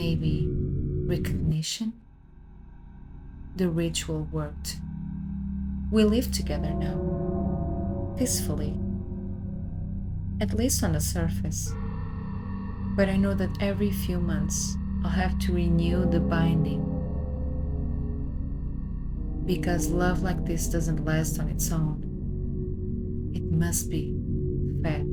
recognition. The ritual worked. We live together now. Peacefully. At least on the surface. But I know that every few months I'll have to renew the binding. Because love like this doesn't last on its own. It must be fed.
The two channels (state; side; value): identical; both; correlation 1.00